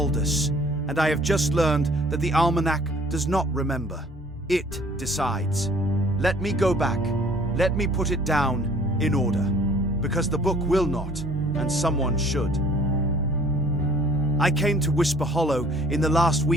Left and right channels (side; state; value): both; normal; correlation 0.54